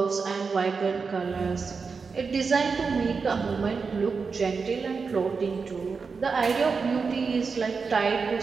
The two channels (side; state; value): left; quieter; 5.0 dB